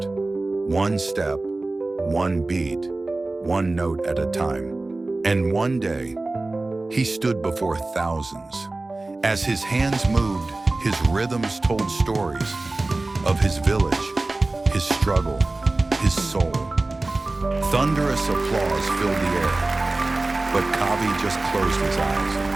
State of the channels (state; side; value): quieter; left; 3.1 dB